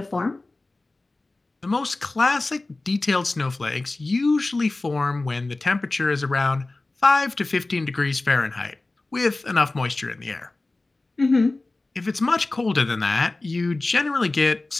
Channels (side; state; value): right; quieter; 3.1 dB